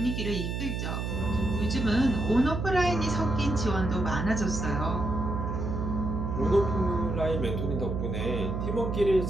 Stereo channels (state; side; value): noise; right; hum, 2 dB below the sound